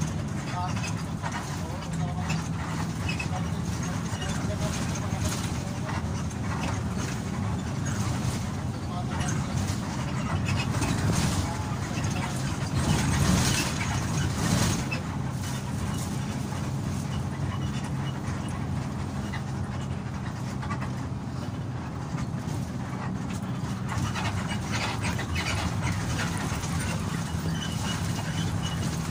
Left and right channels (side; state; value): both; identical; correlation 1.00